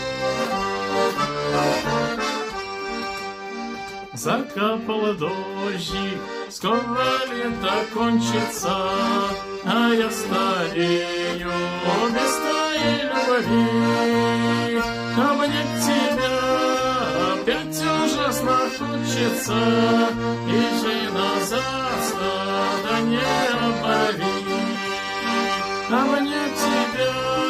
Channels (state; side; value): identical; both; correlation 1.00